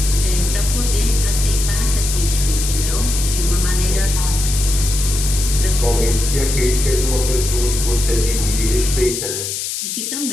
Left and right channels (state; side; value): noise; left; hiss, 4 dB below the sound